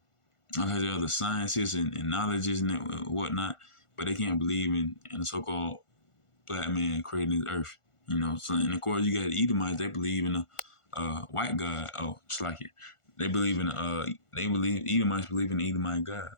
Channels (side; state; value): right; late; 1.5 ms